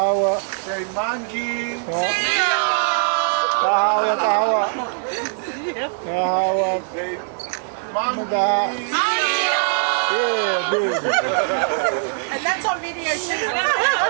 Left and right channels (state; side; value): silent; left; digital silence